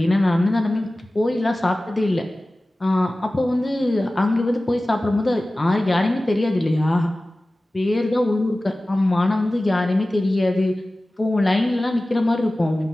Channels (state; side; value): normal; both; correlation 0.97